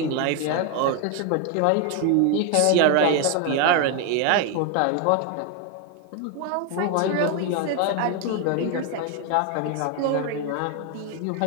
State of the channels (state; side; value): different; both; correlation 0.01